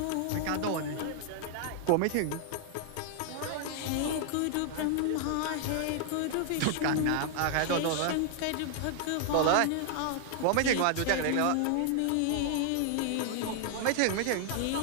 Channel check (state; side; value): different; both; correlation 0.00